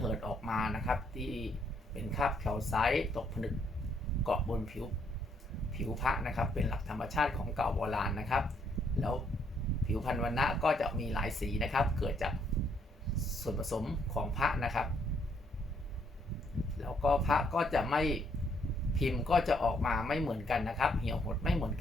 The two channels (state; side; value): normal; both; correlation 0.71